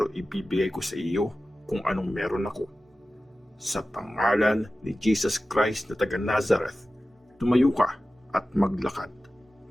ibibigay ko sa iyo kung anong meron ako. Sa pangalan ni Jesus Christ na taga Nazareth, tumayo ka at maglakad."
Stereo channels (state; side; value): normal; both; correlation 0.95